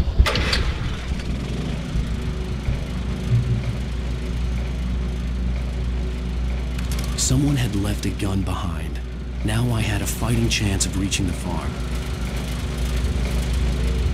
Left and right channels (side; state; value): both; identical; correlation 1.00